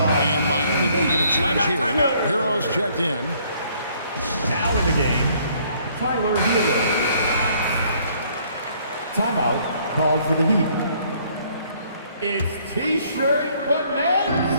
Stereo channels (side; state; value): both; inverted; correlation -0.63